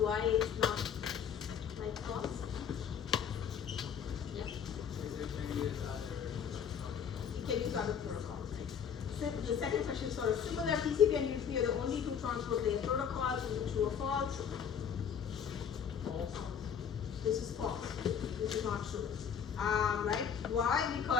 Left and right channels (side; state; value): right; quieter; 7.6 dB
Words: it's not like false? Yeah. Can use other protocols, right? So the second question is sort of similar. TCP and UDP are the only 2 transport layer protocols. Is it true or false? False. This is false. This is not true. Right? Why?